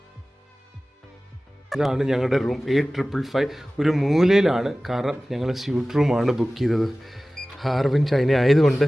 ഇതാണ് ഞങ്ങളുടെ റൂം, 8555. ഒരു മൂലയിലാണ്, കാരണം ഞങ്ങൾ സ്യൂട്ട് റൂമാണ് ബുക്ക് ചെയ്തത്. ഹാർബിൻ ചൈന ആയതുകൊണ്ട്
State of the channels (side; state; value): both; normal; correlation 0.97